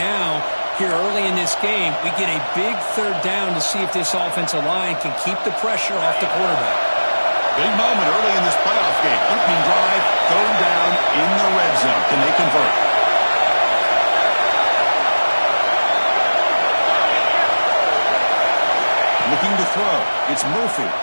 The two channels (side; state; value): both; inverted; correlation -1.00